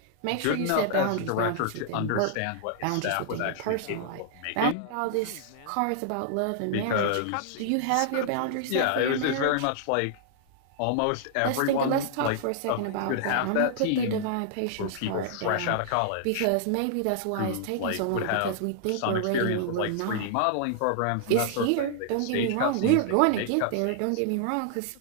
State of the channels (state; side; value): different; both; correlation -0.01